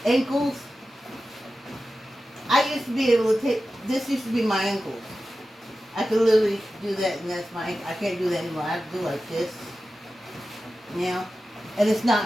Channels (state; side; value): normal; both; correlation 0.94